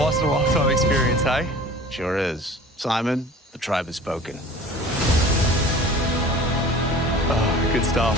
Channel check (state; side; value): normal; both; correlation 0.43